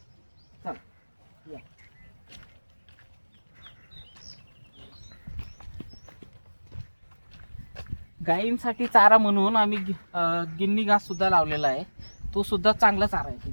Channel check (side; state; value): both; inverted; correlation -1.00